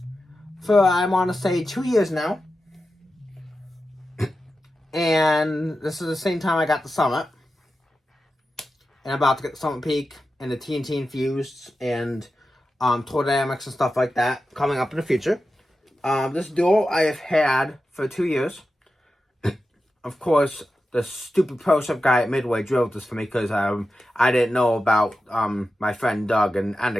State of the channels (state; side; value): normal; both; correlation 0.91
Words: for, I want to say, 2 years now. And this is the same time I got the Summit. And I'm about to get the Summit Peak and the TNT Infused and Tour Dynamics and stuff like that coming up in the future. This Duo I have had for 2 years. Of course, the stupid Pro Shop guy at Midway drove this for me because I didn't know about my friend Doug and